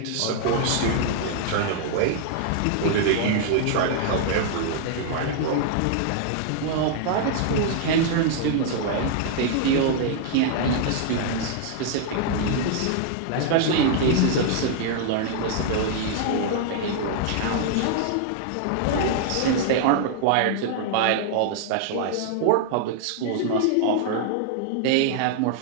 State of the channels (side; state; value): both; different; correlation -0.01